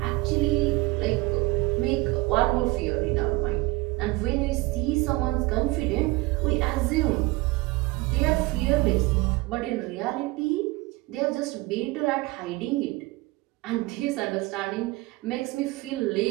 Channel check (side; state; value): left; quieter; 22.1 dB